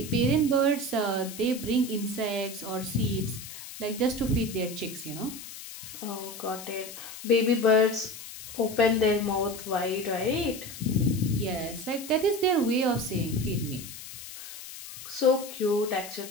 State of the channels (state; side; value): noise; left; hiss, 12 dB below the sound